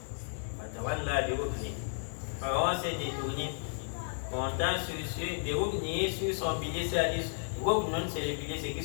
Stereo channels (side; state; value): right; silent; 56 dB below the other